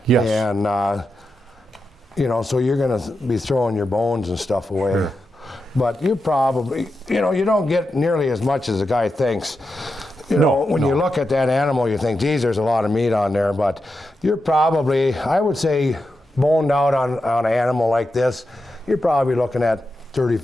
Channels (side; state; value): both; normal; correlation 0.88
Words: Yes. And, you know, so you're going to be throwing your bones and stuff away. Sure. But you probably, you know, you don't get nearly as much as a guy thinks. You know, when you look at that animal, you think, geez, there's a lot of meat on there. But you're probably, I would say, boned out on an animal like this, you're probably looking at